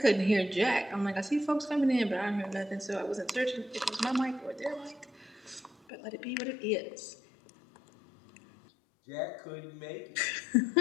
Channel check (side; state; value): right; drops out; at 5.8 s